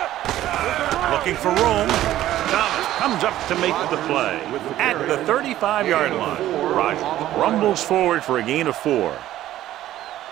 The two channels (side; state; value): left; quieter; 13.6 dB